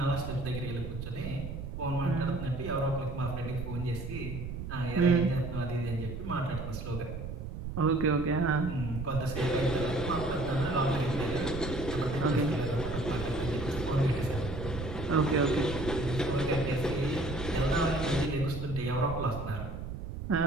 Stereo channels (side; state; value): right; noise; rumble, 7 dB below the sound